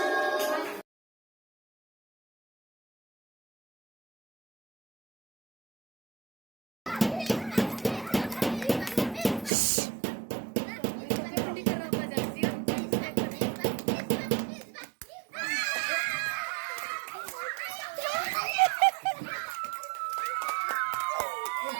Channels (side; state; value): left; drops out; at 9.5 s